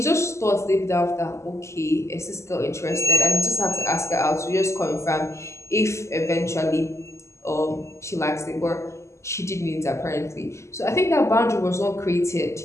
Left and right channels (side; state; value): right; late; 0.13 ms